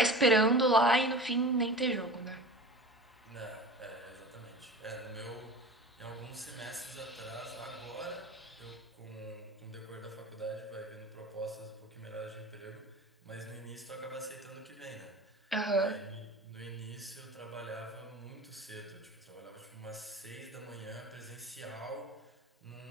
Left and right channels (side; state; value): both; normal; correlation 0.35